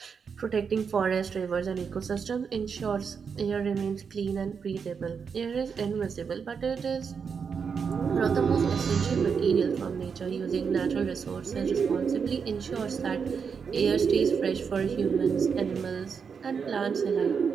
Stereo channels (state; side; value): quieter; left; 6.2 dB